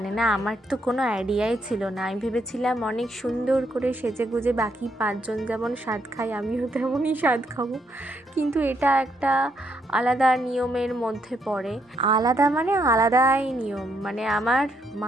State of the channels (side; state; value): both; normal; correlation 0.76